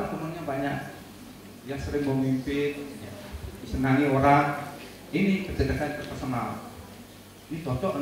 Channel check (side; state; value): both; identical; correlation 1.00